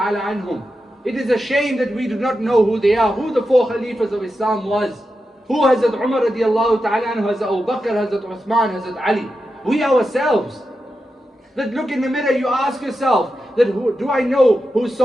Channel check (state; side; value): normal; both; correlation 0.89